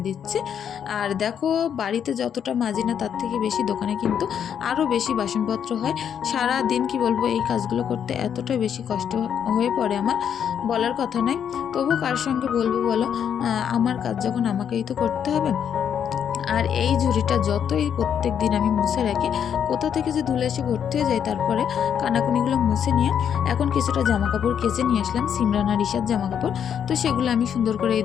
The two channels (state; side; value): quieter; right; 8.4 dB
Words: দিচ্ছি। আর দেখো, বাড়িতে যতটা মাজি না তার থেকে বেশি দোকানে কিন্তু আরও বেশি বাসনপত্র হয়। সারা দিন কি বলবো, এই কাজগুলো করতে এতটা বেশি কষ্ট হয়ে পড়ে আমার, বলার কথা নয়। তবু কার সঙ্গে বলবো বলো, আমার কাজ যখন আমাকেই তো করতে হবে। আর এই ঝুড়িটা যতই প্রত্যেক দিন আমি মুছে রাখি, কোথা থেকে যে ধুলে এসে ভর্তি হয়ে যায়। তারপরে কানাকুনিগুলো মুছে নিয়ে এখন কিছুটা জামা কাপড় কেচে নিয়ে আসলাম, সিমরান আর ঈশার জামা কাপড়। তো সেগুলো আমি সুন্দর করে এই